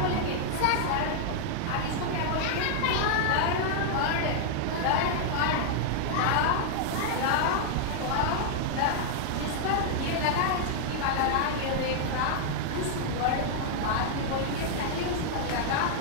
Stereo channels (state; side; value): different; both; correlation -0.01